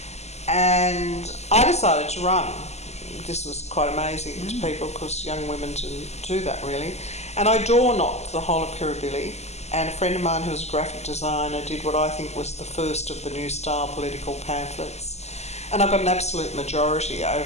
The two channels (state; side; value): late; right; 0.32 ms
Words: And I decided to run. This was quite amazing to people because young women didn't do that really. And I door-knocked the whole of Kirribilli, and a friend of mine who was a graphic designer did what I think was the first of the new style political pamphlets. And I got an absolute majority